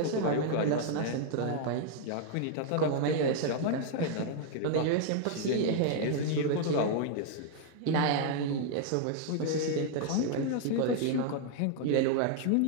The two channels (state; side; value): different; both; correlation 0.00